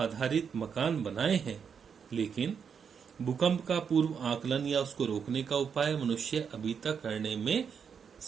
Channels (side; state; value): left; quieter; 6.8 dB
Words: मकान बनाए हैं, लेकिन भूकंप का पूर्व आकलन या उसको रोकने का उपाय मनुष्य अभी तक करने में